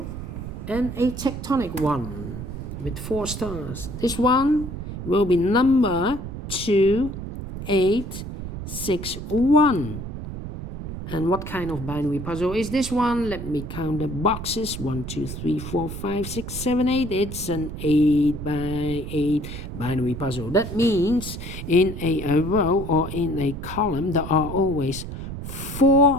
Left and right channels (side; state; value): right; noise; rumble, 8 dB below the sound